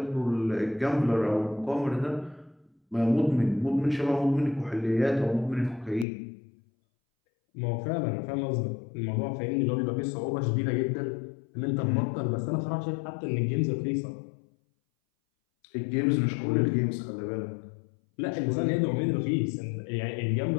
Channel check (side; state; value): right; drops out; at 6.1 s